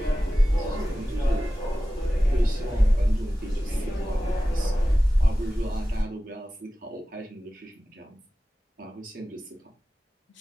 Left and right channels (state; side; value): normal; both; correlation 0.95